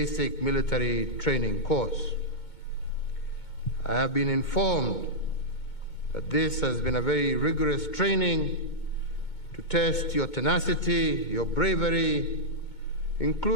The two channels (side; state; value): right; late; 2.2 ms